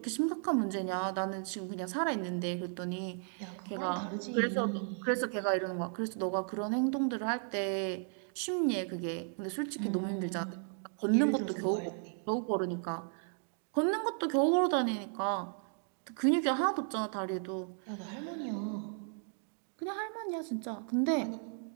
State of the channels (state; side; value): silent; left; 55 dB below the other